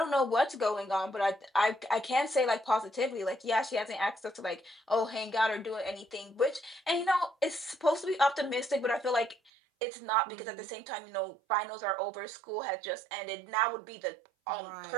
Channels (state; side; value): drops out; left; at 9.5 s